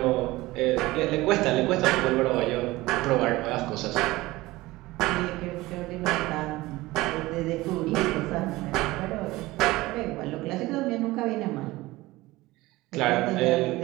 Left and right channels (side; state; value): left; quieter; 19.3 dB